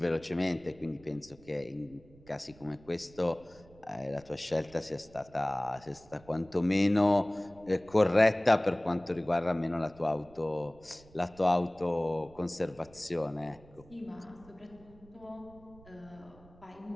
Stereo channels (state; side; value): noise; right; rumble, 24 dB below the sound